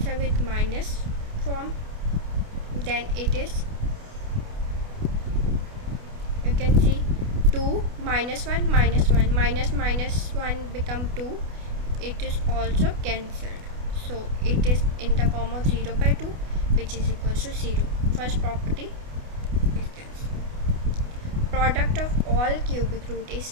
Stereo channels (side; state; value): left; late; 28 ms